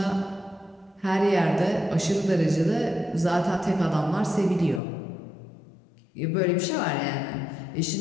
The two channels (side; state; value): right; drops out; at 4.8 s